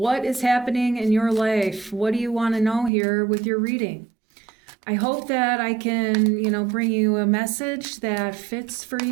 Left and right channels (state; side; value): drops out; left; at 2.9 s